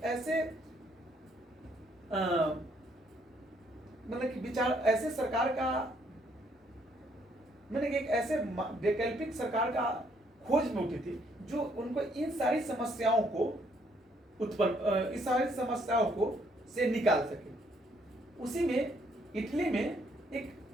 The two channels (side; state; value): both; normal; correlation 0.69